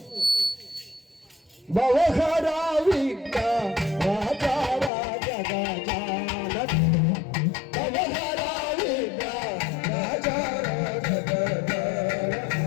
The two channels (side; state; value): right; drops out; at 4.9 s